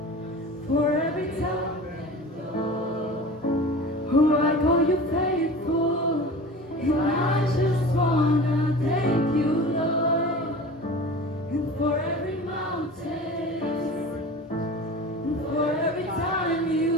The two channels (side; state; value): both; normal; correlation 0.37